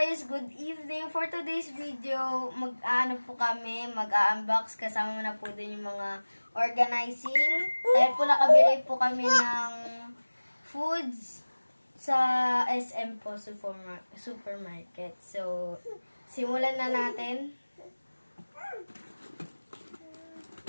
good evening. For today's video, mag-unbox kasama na po din yung mga organizing. Dahil po nakabili po kami ng foods sa SM po supermarket. So, simulan na natin.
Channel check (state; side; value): inverted; both; correlation -1.00